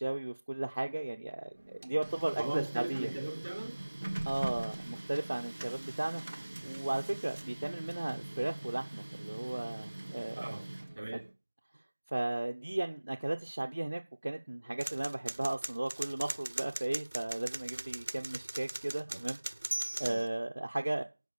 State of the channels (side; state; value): both; inverted; correlation -1.00